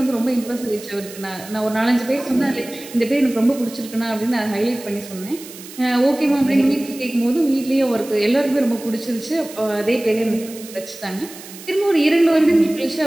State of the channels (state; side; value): noise; right; hiss, 16 dB below the sound